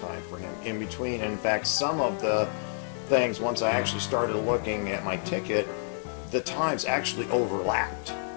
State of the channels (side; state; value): right; silent; 57 dB below the other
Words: for him in between. And in fact, some of the things, once I actually started looking at my ticket, the times actually overlapped.